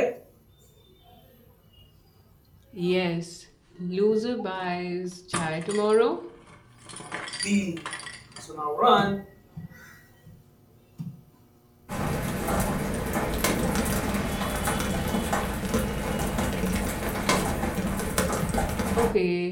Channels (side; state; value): both; identical; correlation 1.00